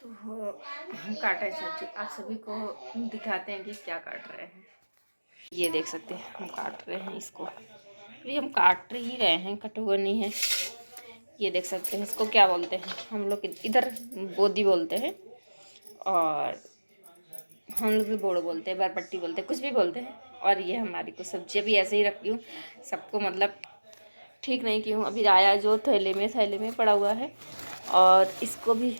तो हम काटे सब्जी, आप सभी को दिखाते हैं कि क्या काट रहे हैं। ये देख सकते हैं हम काट रहे हैं इसको, अभी हम काट ही रहे हैं, कटा हुआ नहीं है। ये देख सकते हैं, इसको क्या बोलते हैं हम लोग इधर, बोदी बोलते हैं और हम लोग भी बोड़ो बोलते हैं, बरपट्टी बोलते हैं, कुछ भी बोलते हैं। और ये हमारी को सब्जी भी ऐसे ही रखती हूँ, सबको मतलब ठीक नहीं की हूँ। अभी आया जो थैले में पड़ा हुआ है और इसको भी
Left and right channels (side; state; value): both; inverted; correlation -1.00